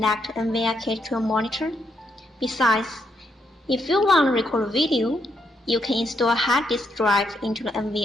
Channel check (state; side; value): normal; both; correlation 0.77